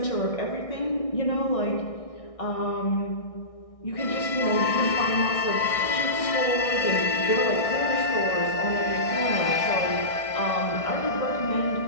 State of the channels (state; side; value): late; right; 1.6 ms